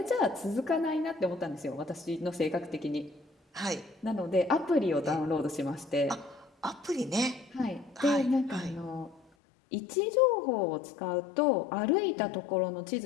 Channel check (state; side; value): drops out; right; at 9.2 s